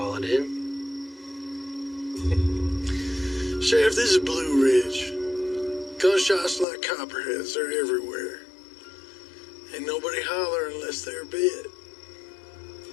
it in? Sheriff, this is Blue Ridge. Gunshots like copperheads, they're everywhere. Ain't nobody holler unless they're bit.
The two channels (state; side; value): drops out; right; at 6.7 s